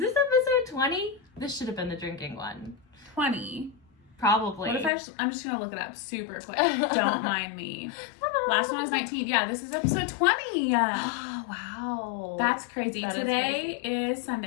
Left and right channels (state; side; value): drops out; right; at 4.9 s